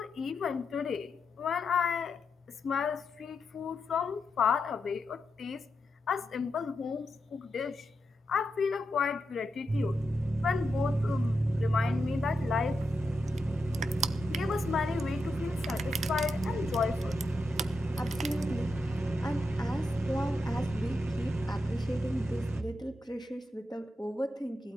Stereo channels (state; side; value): normal; both; correlation 0.86